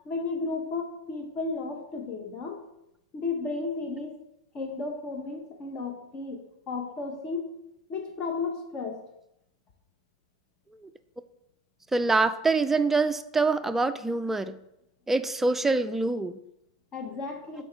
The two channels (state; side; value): normal; both; correlation 0.65